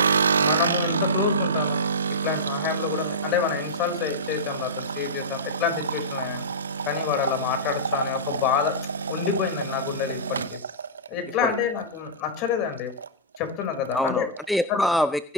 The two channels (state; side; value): normal; both; correlation -0.15